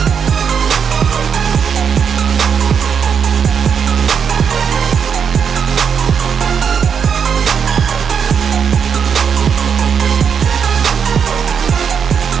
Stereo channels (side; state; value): left; quieter; 7.0 dB